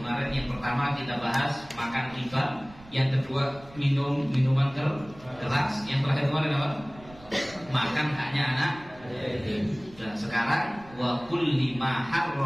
yang pertama kita bahas makan riba, yang kedua minuman keras, yang terakhir kemarin apa? Makan haknya anak. Dan sekarang wa kulli ma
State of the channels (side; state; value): right; noise; rumble, 22 dB below the sound